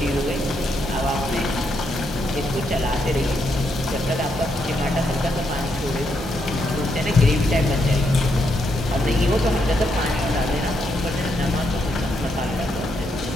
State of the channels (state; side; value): normal; both; correlation 0.79